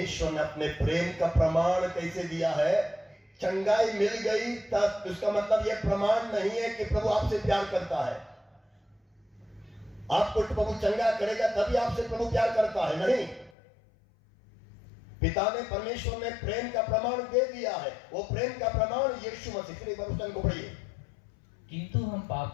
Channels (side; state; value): right; drops out; at 13.5 s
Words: ने अपने प्रेम का प्रमाण कैसे दिया है? चंगाई मिल गई तब, उसका मतलब यह प्रमाण नहीं है कि प्रभु आपसे प्यार करता है। आपको प्रभु चंगा करेगा तभी आपसे प्रभु प्यार करता है, नहीं। पिता ने, परमेश्वर ने प्रेम का प्रमाण दे दिया है। वो प्रेम का प्रमाण यीशु मसीह के वचन को पढ़िए। किंतु हम